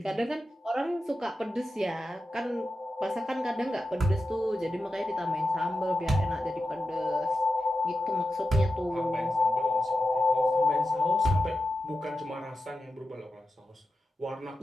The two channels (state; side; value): normal; both; correlation 0.91